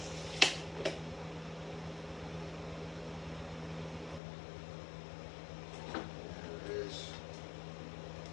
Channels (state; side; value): drops out; right; at 4.2 s